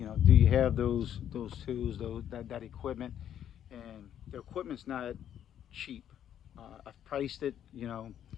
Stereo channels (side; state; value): right; quieter; 10.1 dB